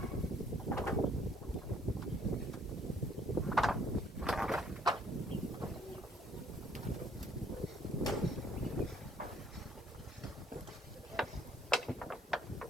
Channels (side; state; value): both; normal; correlation 0.63